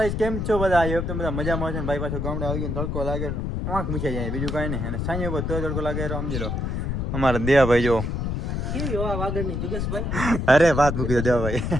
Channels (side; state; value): left; noise; rumble, 2 dB below the sound